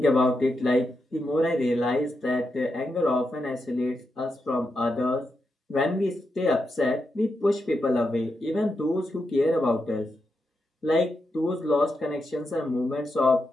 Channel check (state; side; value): normal; both; correlation 0.85